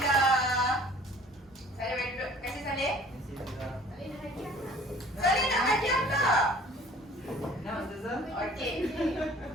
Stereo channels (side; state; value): both; normal; correlation 0.50